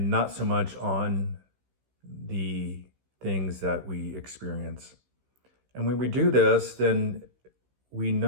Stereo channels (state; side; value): late; left; 16 ms